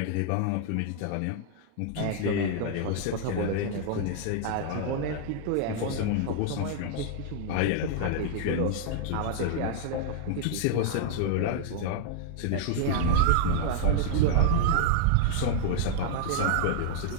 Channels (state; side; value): different; both; correlation -0.01